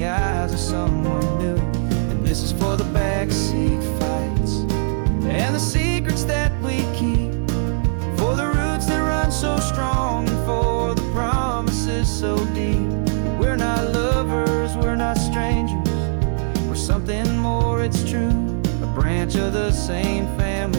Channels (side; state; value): left; silent; 65 dB below the other